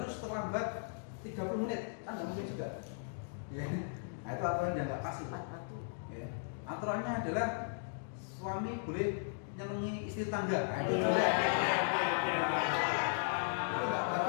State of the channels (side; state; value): right; silent; digital silence